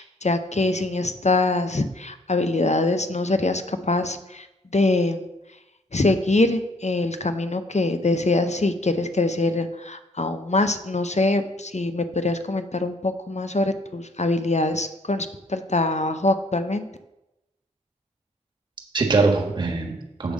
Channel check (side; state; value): both; normal; correlation 0.62